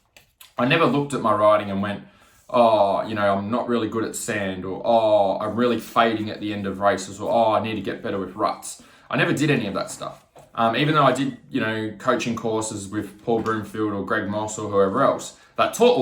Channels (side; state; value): both; identical; correlation 1.00